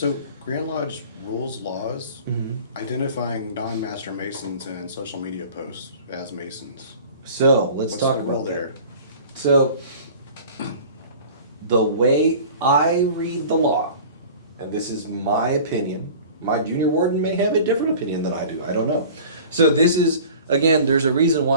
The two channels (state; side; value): inverted; both; correlation -0.43